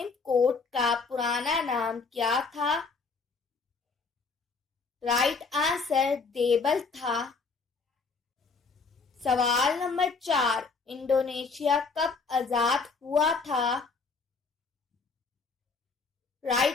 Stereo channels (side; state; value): right; quieter; 4.6 dB